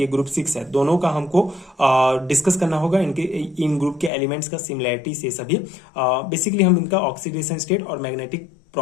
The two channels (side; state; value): right; drops out; at 4.1 s